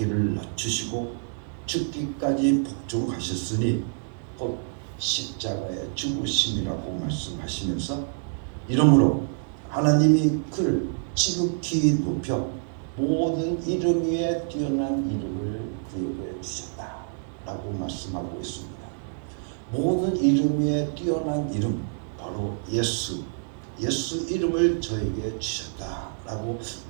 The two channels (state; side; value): silent; left; digital silence